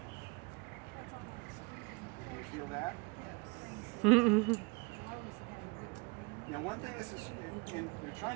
Can you feel that? Now one thing is, and you're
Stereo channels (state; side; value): quieter; left; 29.8 dB